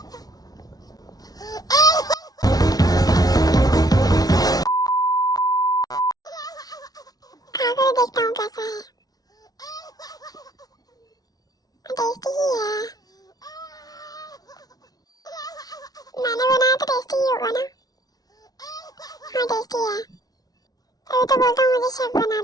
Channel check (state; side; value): late; right; 0.18 ms